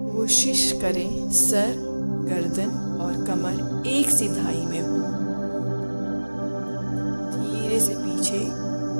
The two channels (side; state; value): both; inverted; correlation -1.00